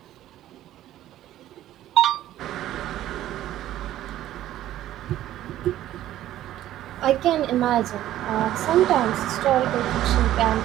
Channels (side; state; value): left; quieter; 13.3 dB